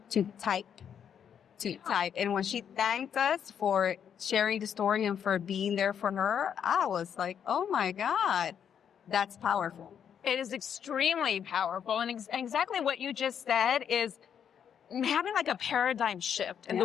to type. And when she thanked us for sharing the story and for being there for her, I was like, oh my God, that's powerful. It is extremely powerful. And exactly what you just said is having like a paradigm shift in the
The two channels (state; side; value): quieter; right; 8.3 dB